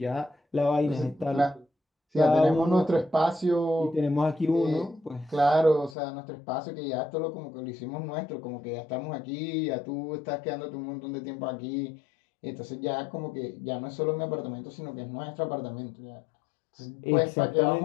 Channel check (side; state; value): right; drops out; at 6.0 s